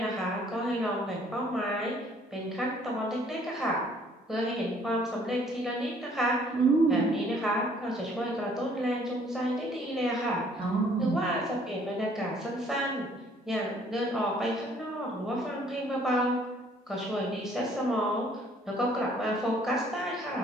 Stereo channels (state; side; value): normal; both; correlation 0.60